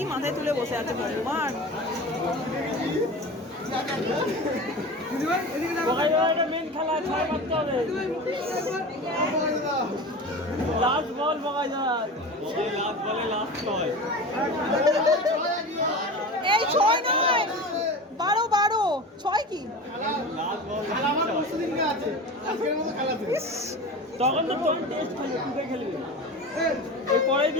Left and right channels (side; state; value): both; normal; correlation 0.31